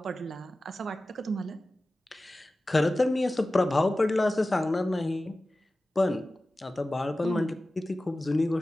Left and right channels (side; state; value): both; normal; correlation 0.96